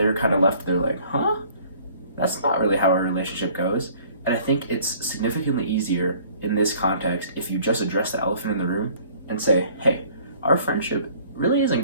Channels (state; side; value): inverted; both; correlation -0.55